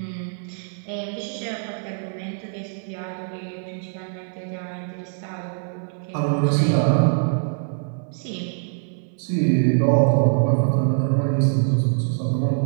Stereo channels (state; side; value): silent; left; 59 dB below the other